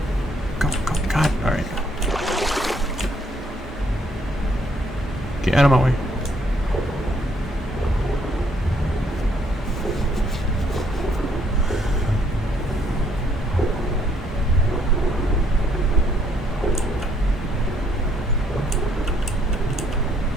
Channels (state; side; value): normal; both; correlation 0.68